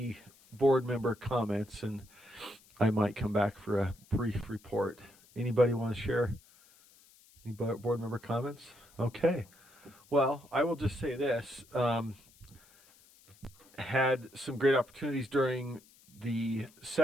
board member comments, and I might come back for a brief report. Anybody want to share any board member comments? Okay. Well, I will just say this. Had some great opportunities during the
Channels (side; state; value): left; noise; hiss, 27 dB below the sound